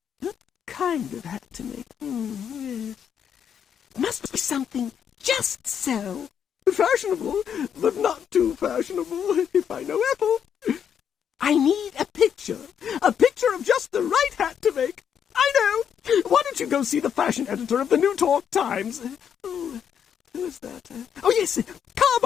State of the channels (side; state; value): right; quieter; 8.2 dB